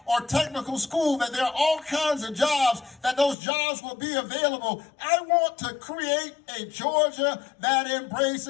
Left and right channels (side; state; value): right; drops out; at 3.4 s